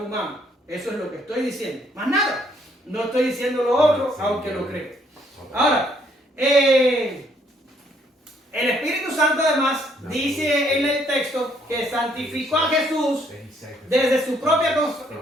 humano. Eso es lo que estoy diciendo. Más nada. No estoy diciendo lo otro, aunque lo creo. Ahora, el Espíritu Santo además dice en el texto que santificó a Jesús desde su propia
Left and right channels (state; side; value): normal; both; correlation 0.67